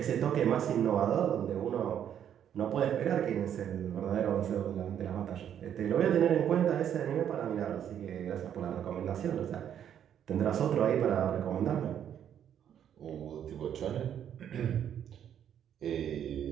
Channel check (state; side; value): quieter; left; 9.5 dB